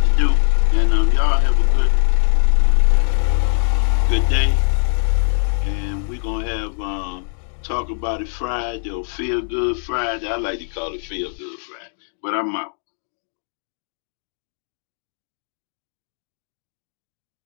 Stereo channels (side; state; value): right; silent; 65 dB below the other